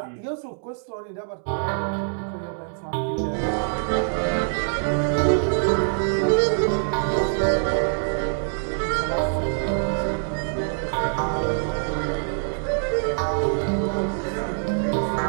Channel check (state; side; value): silent; left; 62 dB below the other